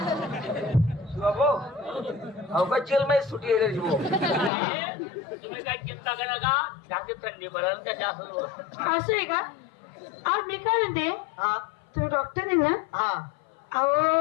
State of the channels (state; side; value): drops out; right; at 4.5 s